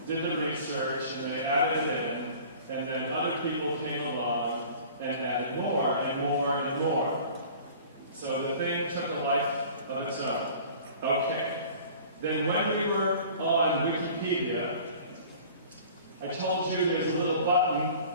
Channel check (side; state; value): both; inverted; correlation -0.45